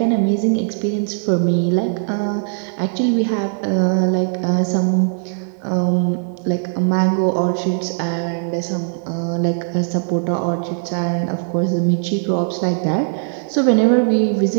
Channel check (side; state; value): left; silent; digital silence